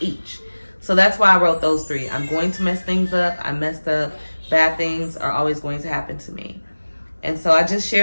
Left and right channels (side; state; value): both; inverted; correlation -1.00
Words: So that's why I wrote those 3. I'm going to mess things up. I messed up. Bad things are always going to happen to me. And so I just